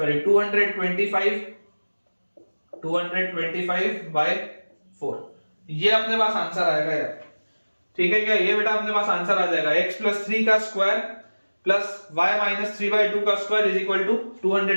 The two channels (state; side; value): inverted; both; correlation -1.00